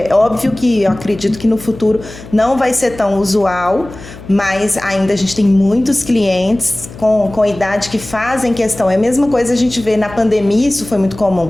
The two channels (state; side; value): noise; left; hum, 16 dB below the sound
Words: óbvio que eu acredito que no futuro não vai ser tão usual, mas ainda a gente tem muitos clientes com idade que fazem questão. É a mesma coisa a gente vê na pandemia, isso foi muito